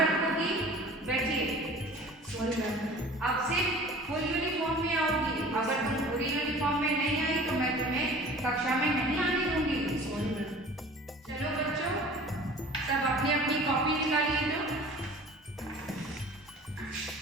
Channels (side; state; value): both; normal; correlation 0.44